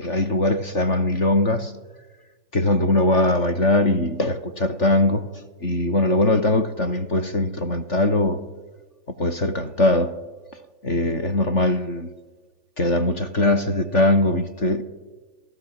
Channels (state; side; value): late; right; 3.4 ms